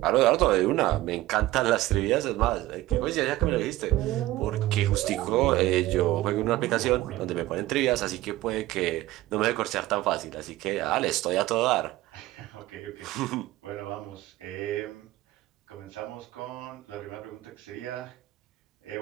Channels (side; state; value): left; quieter; 16.5 dB